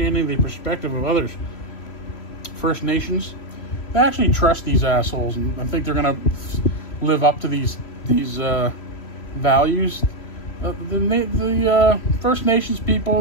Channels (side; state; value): right; late; 3.0 ms